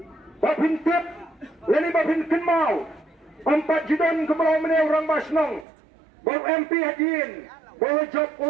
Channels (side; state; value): left; drops out; at 5.7 s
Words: Bapin tip, lani bapin kenmau, 4 judan kebelau meneu orang basnong, bau MP hadin, bau job